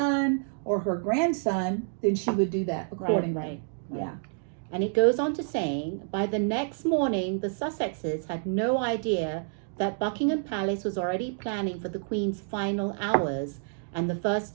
or her grandson, then she would do that accordingly. Right. Yeah. And it goes on to saying, by the next morning, the Sussexes had no idea that Buckingham Palace was already planning for the Queen's final hours and the first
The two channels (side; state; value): left; silent; digital silence